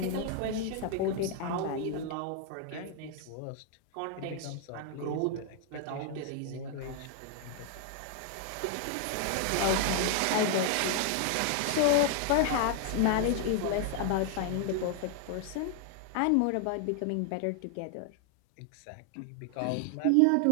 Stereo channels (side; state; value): both; different; correlation 0.00